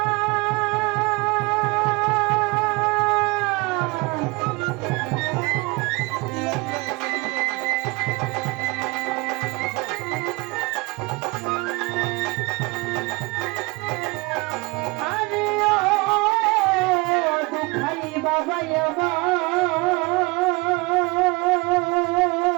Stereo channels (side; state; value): left; quieter; 25.8 dB